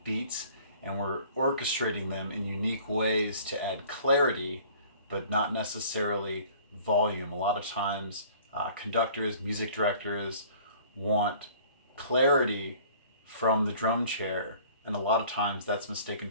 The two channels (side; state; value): both; inverted; correlation -0.50